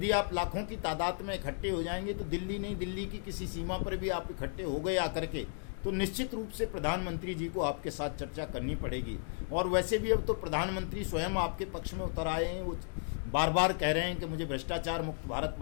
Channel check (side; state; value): right; silent; digital silence